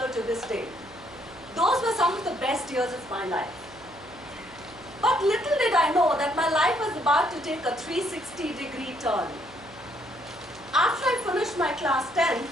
to this day. Those were some of the best years of my life. But little did I know that my life was about to take a 360-degree turn. After I finished my class 10,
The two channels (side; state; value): right; noise; hum, 22 dB below the sound